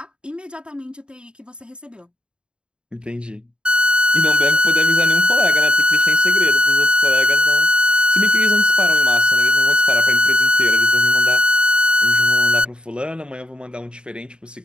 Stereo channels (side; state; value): left; late; 0.052 ms